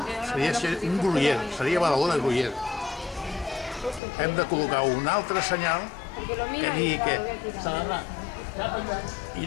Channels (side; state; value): right; drops out; at 4.0 s